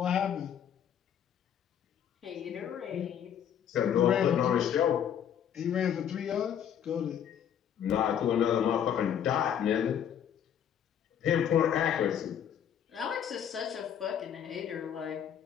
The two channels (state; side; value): quieter; right; 9.1 dB